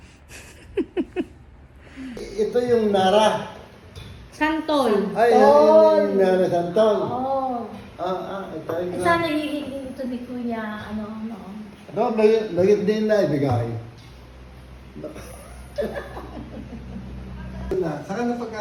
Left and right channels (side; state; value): both; identical; correlation 1.00